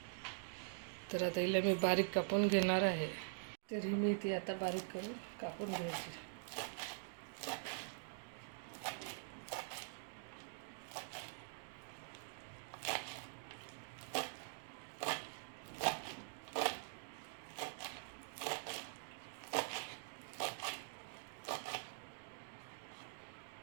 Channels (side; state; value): left; silent; digital silence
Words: तर आता हिला मी बारीक कापून घेणार आहे. तर ही मेथी आता बारीक करून कापून घ्यायची.